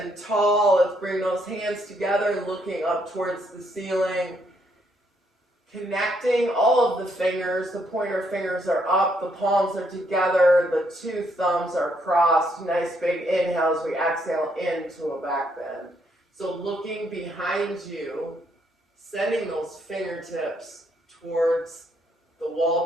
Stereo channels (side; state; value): both; normal; correlation 0.73